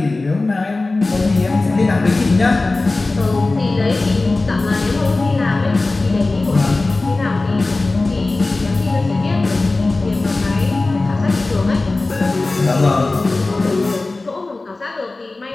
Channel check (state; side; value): quieter; right; 3.3 dB